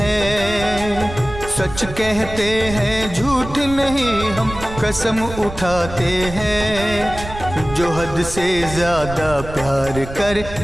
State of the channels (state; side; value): noise; right; rumble, 11 dB below the sound